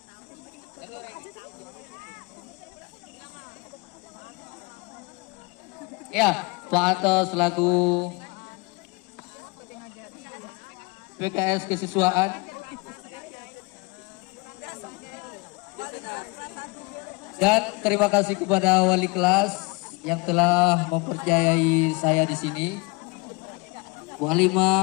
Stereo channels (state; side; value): quieter; right; 27.4 dB